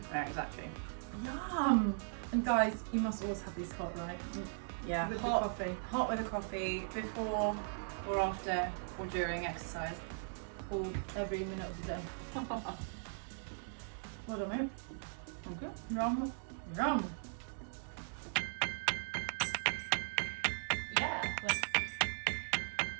Yeah, exactly. Yum! And guys, you must always have these hot, right? Yeah, With hot, the coffee. hot with a coffee before or after or during exercise. Or every minute of the day. Well done, mate. Okay. Yum. Yum. Yeah.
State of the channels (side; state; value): left; silent; digital silence